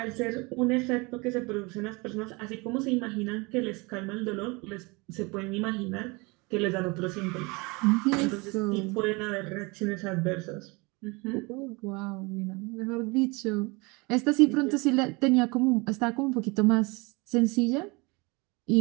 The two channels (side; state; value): left; quieter; 26.8 dB